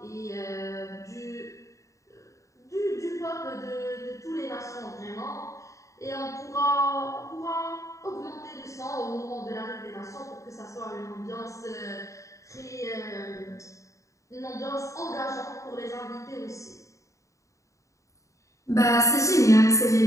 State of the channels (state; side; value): late; right; 0.15 ms